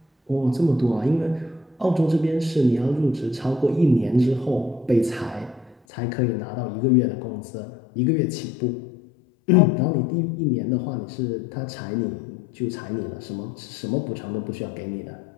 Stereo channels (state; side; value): drops out; right; at 5.8 s